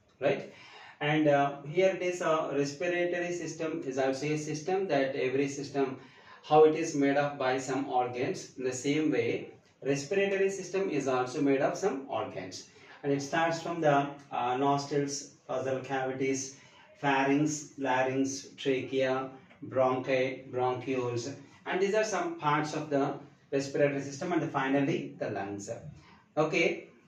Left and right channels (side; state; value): both; identical; correlation 1.00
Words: right? And here it is a respiratory system is also a system that every system how it is made up by some organs. In the same way, respiratory system is also made of some organs, and it starts from the nostrils, nasal cavities, pharynx, larynx, trachea, bronchi, bronchioles, and these are some parts of the respiratory system, and finally the lungs. Okay,